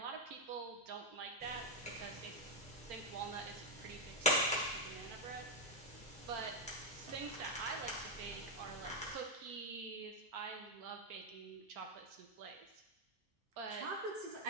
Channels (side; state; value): both; normal; correlation 0.01